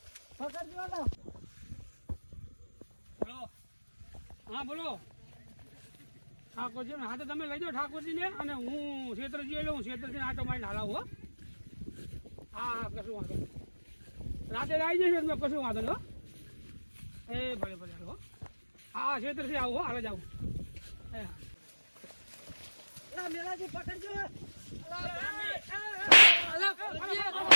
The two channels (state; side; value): inverted; both; correlation -1.00